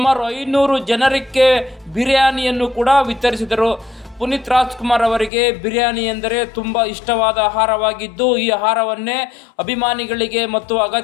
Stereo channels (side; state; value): right; drops out; at 5.3 s